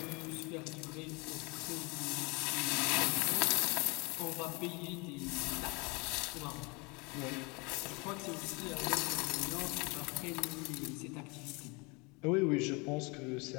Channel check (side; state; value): right; quieter; 28.4 dB